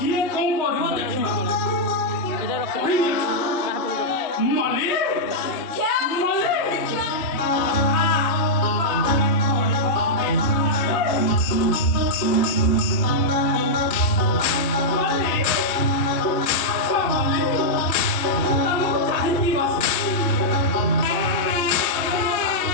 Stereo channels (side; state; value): right; late; 3.2 ms